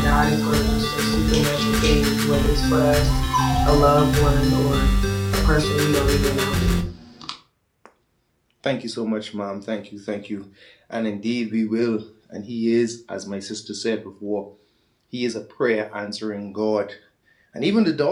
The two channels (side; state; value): both; identical; correlation 1.00